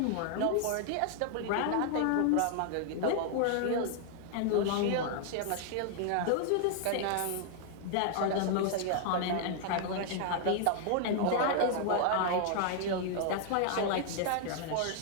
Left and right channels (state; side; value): different; both; correlation 0.00